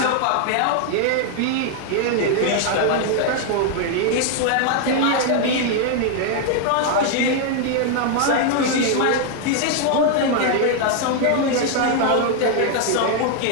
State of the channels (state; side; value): different; both; correlation 0.00